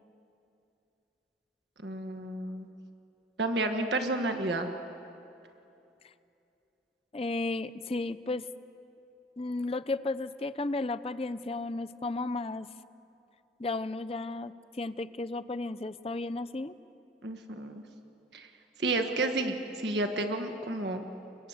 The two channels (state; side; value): normal; both; correlation 0.44